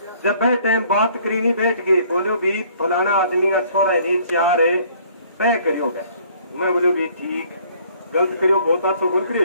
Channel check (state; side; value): inverted; both; correlation -0.59